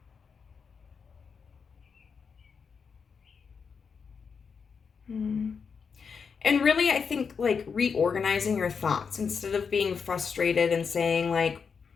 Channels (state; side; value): quieter; right; 5.9 dB